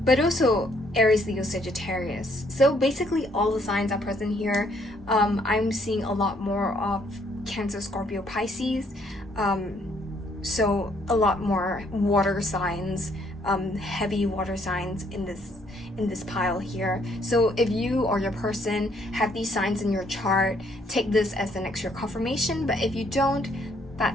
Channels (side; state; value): both; normal; correlation 0.67